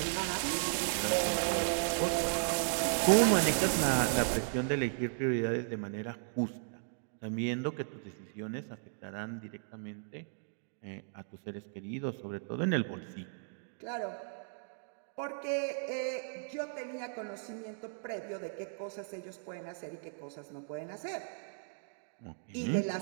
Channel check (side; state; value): left; silent; digital silence